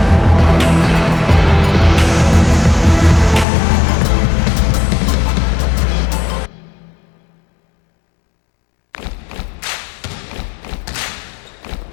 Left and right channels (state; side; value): drops out; right; at 3.5 s